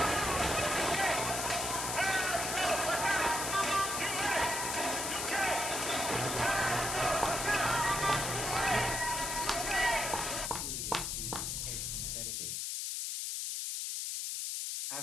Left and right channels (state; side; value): noise; left; hiss, 2 dB below the sound